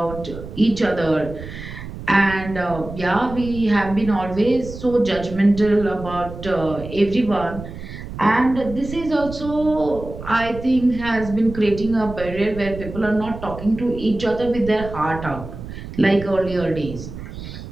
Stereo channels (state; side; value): noise; right; rumble, 11 dB below the sound